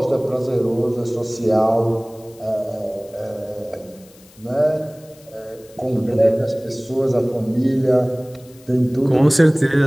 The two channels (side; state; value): left; noise; hiss, 26 dB below the sound